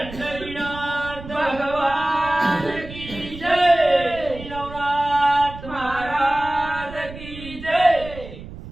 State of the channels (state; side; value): noise; right; rumble, 14 dB below the sound